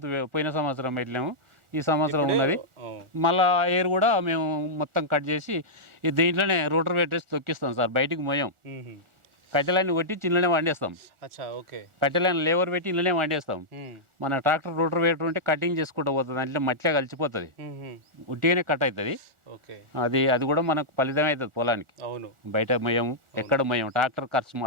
పోయిన సంవత్సరం పెట్టలేము, ఈ సంవత్సరం ఉన్నది. మళ్ళీ ఎయిర్ కూడా మేము మొత్తం కట్ చేసి దీంట్లోనే రోటర్ పెట్టేసి తొక్కిస్తాం సార్. బయటికి మోయం, కట్టెలన్నీ కొట్టి ఇంట్లోనే వండేస్తాం. కట్టెలైన లేబర్ పెట్టి ఇంట్లోనే వండేస్తాం. మన ట్రాక్టర్ రోటర్ వేటర్ ఉంటే కటింగ్ చేసుకుంటూ పోతుంది, అంటే మట్టిలో కలిసిపోతుంది, ఉట్టిగానే కట్ అవుతుంది. అది కూడా మనకు ఫలితం అవుతుంది పొలానికి. బయట మోయం, ఎక్కడ మోయం, ట్రాక్టర్ ఖర్చు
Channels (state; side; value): late; left; 1.4 ms